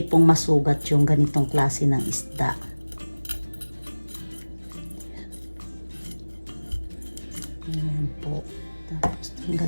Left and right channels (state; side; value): inverted; both; correlation -1.00